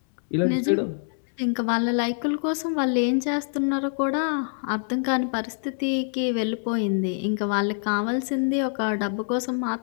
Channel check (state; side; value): silent; right; digital silence